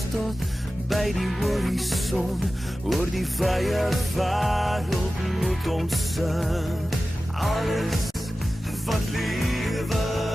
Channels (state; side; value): normal; both; correlation 0.95